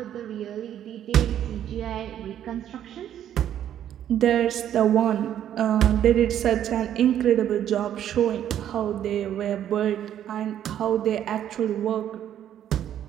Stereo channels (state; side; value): quieter; left; 10.6 dB